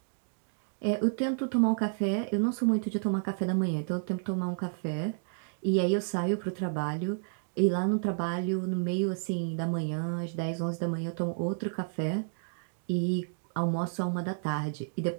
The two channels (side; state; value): left; silent; digital silence